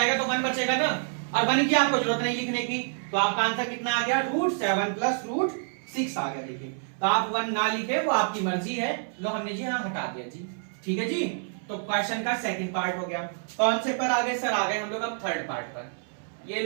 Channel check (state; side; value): silent; left; 60 dB below the other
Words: तो 1 बचेगा ना, और 1 की आपको जरूरत नहीं लिखने की, तो आपका आंसर कितना आ गया, √7 प्लस √6 आ गया। देखिए तो आप 1 ना लिखे, वो आपकी मर्जी है। लो हमने जी हाँ हटा दिया जी, ठीक है जी। तो क्वेश्चन का सेकंड पार्ट हो गया। कौन से पर आ गए सर, आ गए हम लोग अब थर्ड पार्ट पर। ये